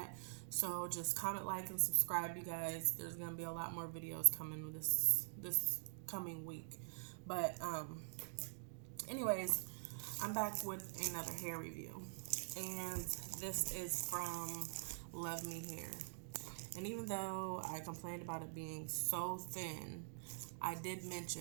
So just comment, like, and subscribe, you guys. There's gonna be a lot more videos coming this coming week. But anyways, I'm back with another hair review, and this is from Luvme Hair. And even though I complained about it being so thin, I did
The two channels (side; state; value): left; silent; digital silence